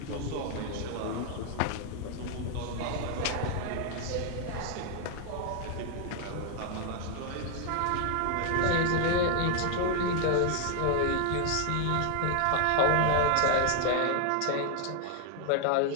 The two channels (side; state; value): both; different; correlation 0.00